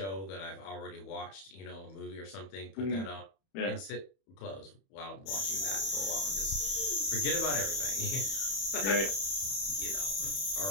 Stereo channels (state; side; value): late; right; 31 ms